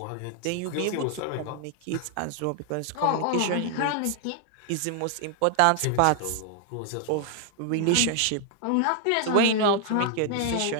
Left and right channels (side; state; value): both; different; correlation 0.00